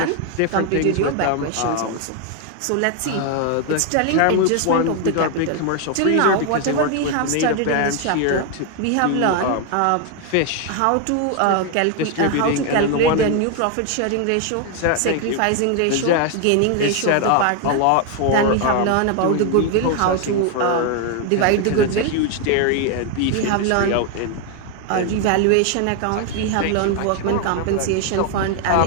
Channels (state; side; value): different; both; correlation 0.01